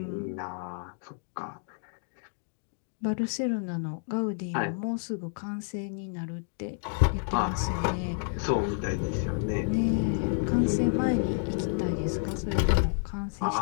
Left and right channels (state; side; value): silent; right; digital silence